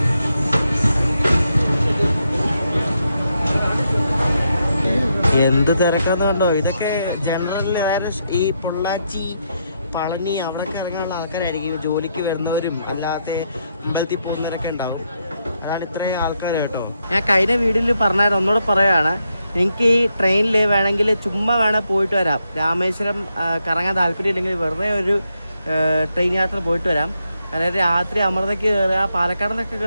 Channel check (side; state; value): both; inverted; correlation -0.80